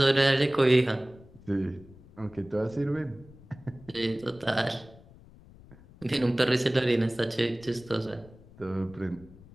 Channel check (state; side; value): noise; left; rumble, 22 dB below the sound